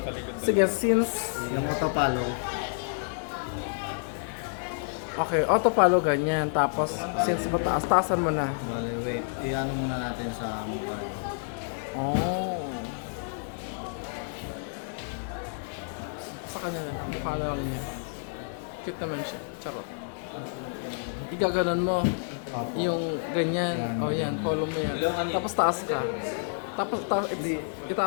Sige, since Yung auto-follow. okay, auto follow ganyan. Tapos, since mataas, taasan mo na. Bale, wait. I-ano muna natin sa mukha. Oh. Sa kanya na. Mukha na lang niya. Cute naman siya. Charot. Igaganon mo. Opo. Yung ganyan. O yan, follow mo yan. Tapos taas ka. Tapos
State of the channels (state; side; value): silent; right; 58 dB below the other